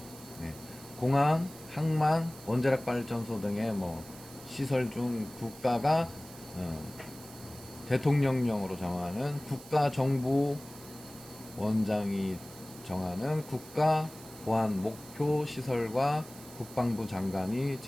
네. 공항, 항만, 원자력 발전소 등의 시설 중 국가가 대통령령으로 정하는 국가정보원장이 정하는 국가 보안 목표 시설과 국방부 장관이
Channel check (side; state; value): right; noise; hiss, 18 dB below the sound